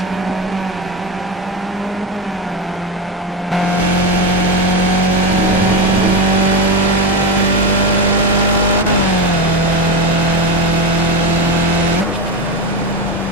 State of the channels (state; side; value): normal; both; correlation 0.16